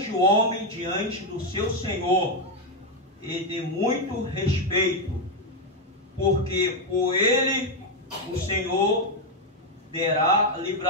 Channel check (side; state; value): both; normal; correlation 0.03